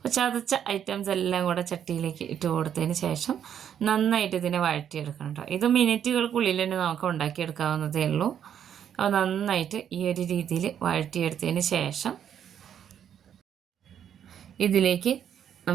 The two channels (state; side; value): quieter; left; 9.1 dB